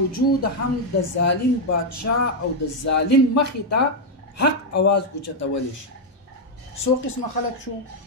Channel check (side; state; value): both; normal; correlation 0.00